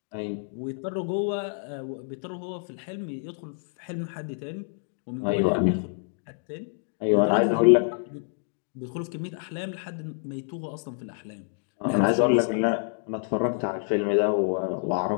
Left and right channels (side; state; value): right; silent; digital silence